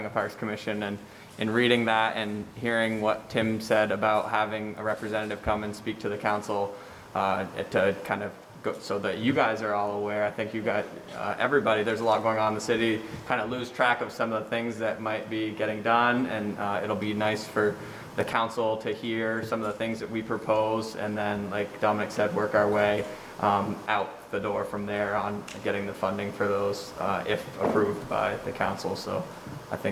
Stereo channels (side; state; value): both; identical; correlation 1.00